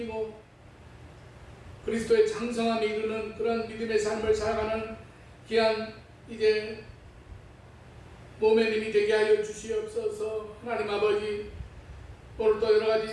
그리스도의 장성함에 이르는 그런 믿음의 삶을 살아가는 귀한 이제 몸의 힘이 되게 하여 주시옵소서. 하나님 아버지, 오늘도 여러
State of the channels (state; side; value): identical; both; correlation 1.00